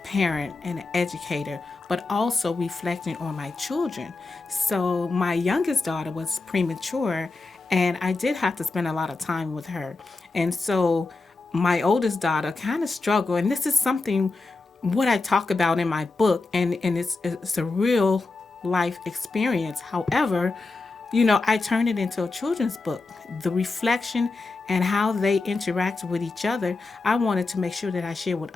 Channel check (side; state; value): right; quieter; 3.6 dB